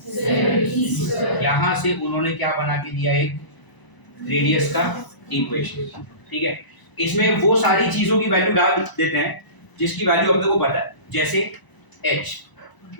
z। यहाँ से उन्होंने क्या बना के दिया, एक रेडियस का इक्वेशन, ठीक है। इसमें वो सारी चीजों की वैल्यू डाल देते हैं जिसकी वैल्यू अपने को पता है, जैसे h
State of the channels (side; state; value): right; late; 1.0 ms